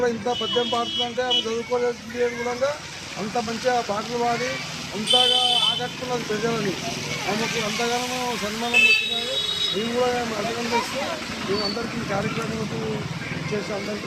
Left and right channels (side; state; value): both; identical; correlation 1.00